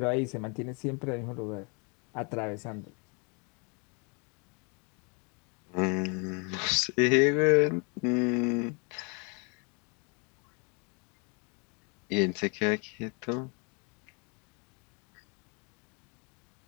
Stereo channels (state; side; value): quieter; right; 34.2 dB